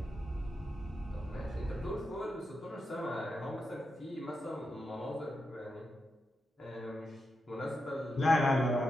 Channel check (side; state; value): both; normal; correlation 0.87